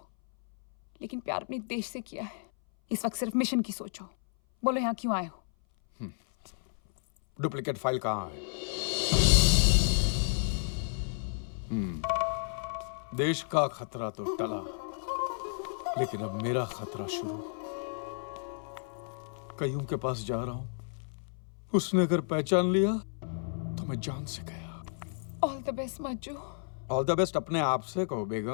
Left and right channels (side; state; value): right; silent; 57 dB below the other